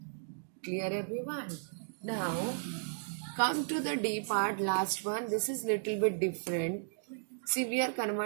Clear everyone? Now come to the D part, last one. This is little bit different. See, we are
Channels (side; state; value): left; silent; digital silence